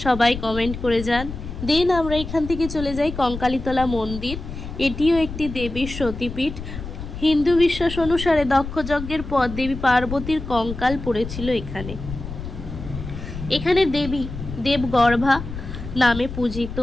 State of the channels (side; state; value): left; noise; rumble, 9 dB below the sound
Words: সবাই কমেন্ট করে যান। দেন আমরা এখান থেকে চলে যাই কঙ্কালীতলা মন্দির। এটিও একটি দেবীর সতীপীঠ। হিন্দু বিশ্বাস অনুসারে দক্ষ যজ্ঞের পর দেবী পার্বতীর কঙ্কাল পড়েছিল এখানে। এখানে দেবী দেবগর্ভা নামে পূজিত